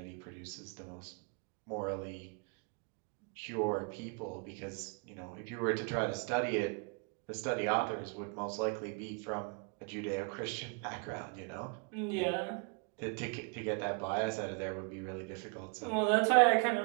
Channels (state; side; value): quieter; left; 35.5 dB